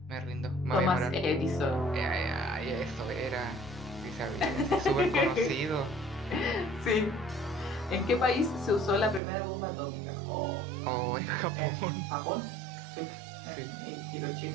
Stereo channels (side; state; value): left; drops out; at 9.2 s